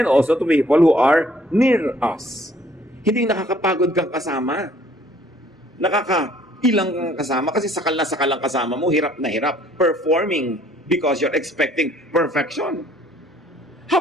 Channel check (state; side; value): normal; both; correlation 0.60